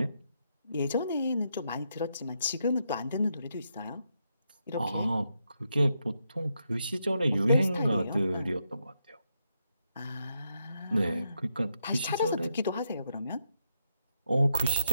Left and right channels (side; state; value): both; inverted; correlation -0.81